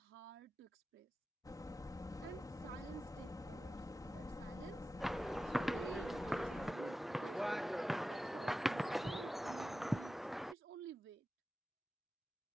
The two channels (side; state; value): both; normal; correlation 0.94